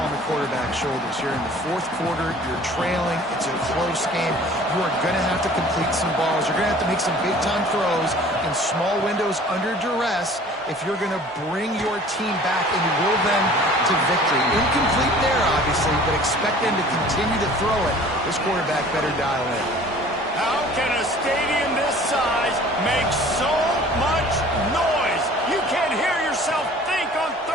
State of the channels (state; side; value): normal; both; correlation 0.48